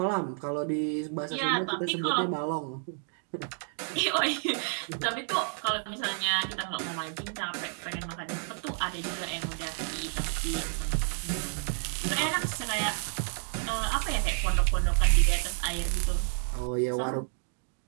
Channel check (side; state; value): left; silent; 58 dB below the other